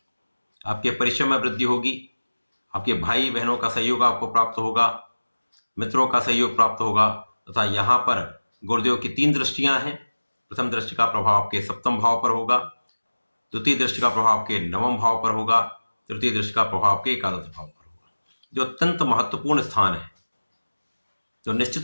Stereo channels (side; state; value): both; inverted; correlation -1.00